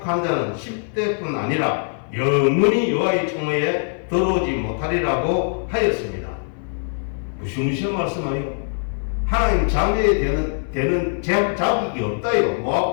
자는 10대뿐 아니라 영원히 여호와의 청회에 들어오지 못하리라고 하였습니다. 무시무시한 말씀하요. 하나님 자녀에 되는 자격이 없다요.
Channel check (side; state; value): right; silent; 59 dB below the other